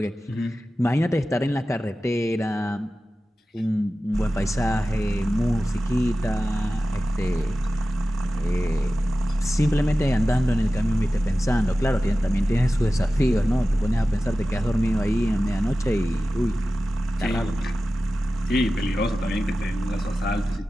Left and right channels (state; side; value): normal; both; correlation 0.95